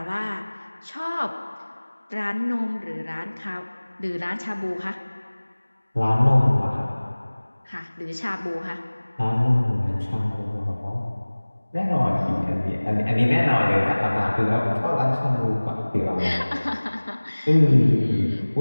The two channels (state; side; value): inverted; both; correlation -1.00